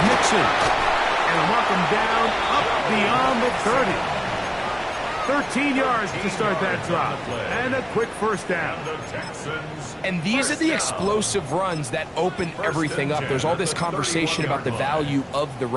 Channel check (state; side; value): identical; both; correlation 1.00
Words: Mixon. And a mark him down up beyond the 30. 13 yards to start that drop. And a quick first down. And these are the explosive runs that open everything up. There's all this conversation about the value of the